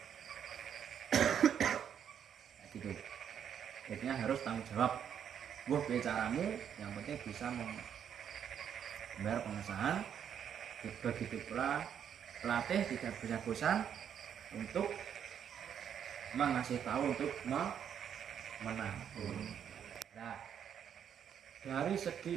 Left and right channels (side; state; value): left; quieter; 8.6 dB